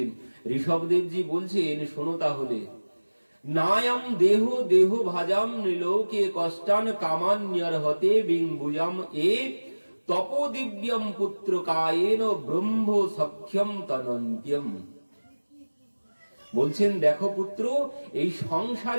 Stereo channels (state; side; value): inverted; both; correlation -1.00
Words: ঋষভদেবজি বলছেন শোনো তাহলে, নায়ম দেহ দেহ ভাজাম নিলোকে কষ্টান কামান্যর হতে বিংবুজাম এ তপোদিব্যম পুত্র কায়েন ব্রহ্ম সখ্যম তনন্ত্যম। বলছেন দেখো পুত্র, এই